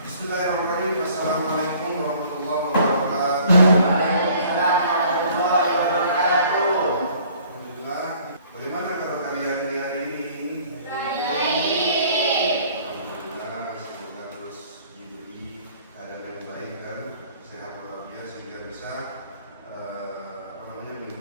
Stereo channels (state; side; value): inverted; both; correlation -0.55